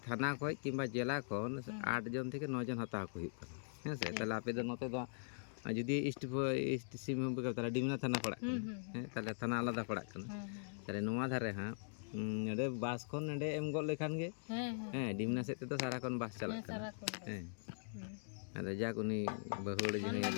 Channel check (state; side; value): silent; right; digital silence